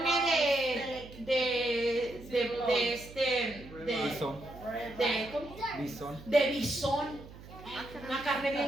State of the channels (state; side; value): noise; right; hum, 17 dB below the sound